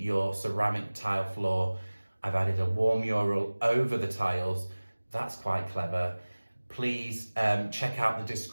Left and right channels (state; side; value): inverted; both; correlation -1.00